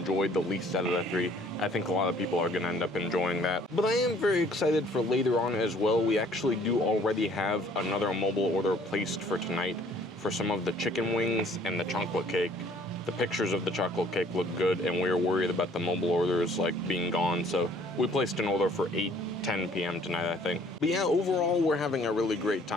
the least out of the 3. I think a lot of people are gonna end up enjoying that. But I am very excited for later on as well. We actually do already have another mobile order placed for tonight for some of the chicken wings and the chocolate cake. The pictures of the chocolate cake look good, and we were worried about the mobile orders like being gone, so we placed an order for 8:10 p.m. tonight, I think. But yeah, overall, we're having a really great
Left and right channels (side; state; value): both; normal; correlation 0.57